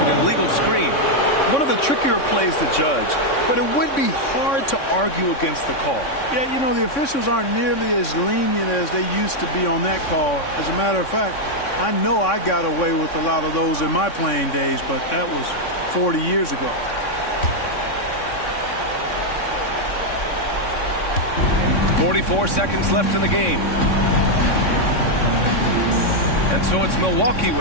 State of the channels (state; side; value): late; right; 3.6 ms